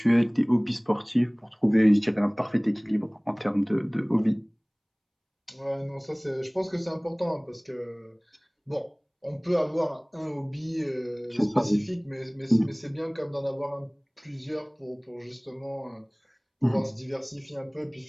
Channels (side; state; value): both; identical; correlation 1.00